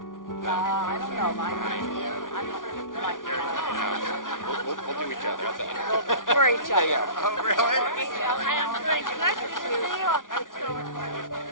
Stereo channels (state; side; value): late; right; 0.88 ms